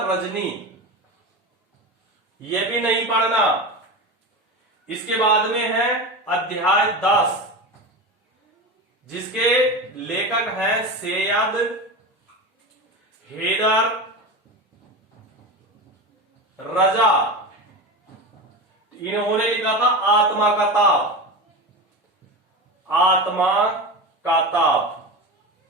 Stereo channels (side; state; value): both; normal; correlation 0.24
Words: रजनी, ये भी नहीं पढ़ना। इसके बाद में है अध्याय 10, जिसके लेखक हैं सैयद हैदर रजा। इन्होंने लिखा था आत्मा का ताप। आत्मा का ताप,